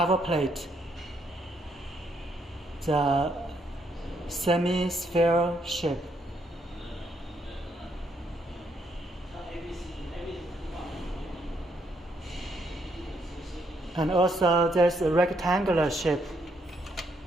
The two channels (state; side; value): normal; both; correlation 0.74